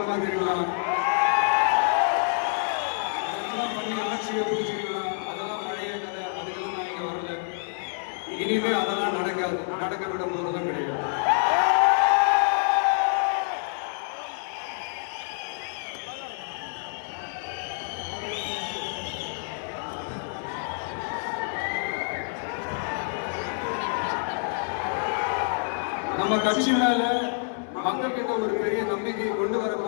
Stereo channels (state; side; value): silent; right; digital silence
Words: அதெல்லாம் பண்ணி ஆட்சியை பிடிச்சிருக்கலாம். அதெல்லாம் பழைய கதை, அதுக்கெல்லாம் நான் இங்க வரல. இனிமே அதெல்லாம் நடக்காது, நடக்கப்பட போறதும் கிடையாது. நம்ம கட்சியினால மக்கள் கிட்ட ஒரு பெரிய நம்பிக்கையை கொண்டு வர